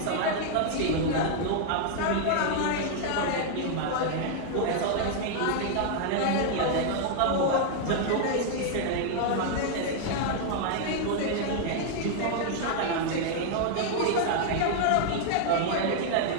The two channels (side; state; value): both; different; correlation 0.00